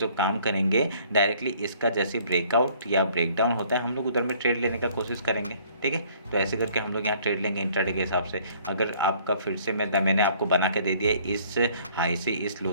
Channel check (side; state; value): both; inverted; correlation -0.58